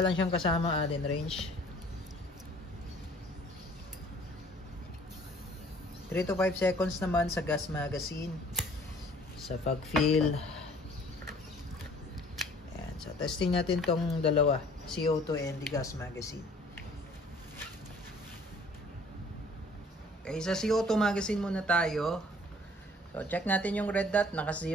lang siyang kasama Allen wrench. 3 to 5 seconds naman sa gas magazine. Sa pag-fill. Yan. So testing natin tong dalawa. CO2 and the gas magazine. Okay, sa CO2 magazine muna tayo. So, check natin yung red dot.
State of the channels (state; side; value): normal; both; correlation 0.54